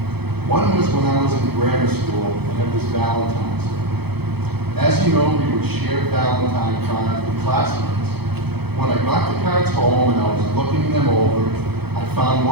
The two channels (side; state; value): left; late; 0.97 ms